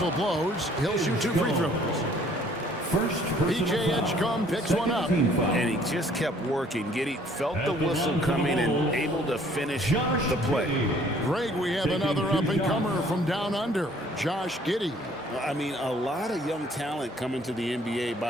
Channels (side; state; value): both; normal; correlation 0.58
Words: blows. He'll shoot 2 free throws. First PJ Edgecombe picks one up. And he just kept working. Giddey felt the whistle coming and able to finish the play. Greg, we have another up-and-comer from down under, Josh Giddey. I mean, a lot of young talent coming to the NBA